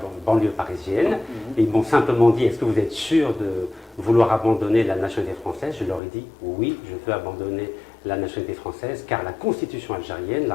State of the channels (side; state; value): right; drops out; at 6.0 s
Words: banlieue parisienne, et ils m'ont simplement dit, est-ce que vous êtes sûr de vouloir abandonner la nationalité française? Je leur ai dit, oui, je veux abandonner la nationalité française, car la Constitution algérienne,